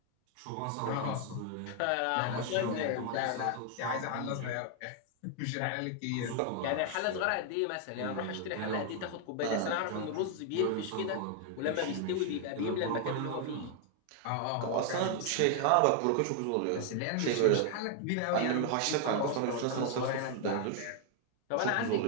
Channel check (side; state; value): both; different; correlation 0.00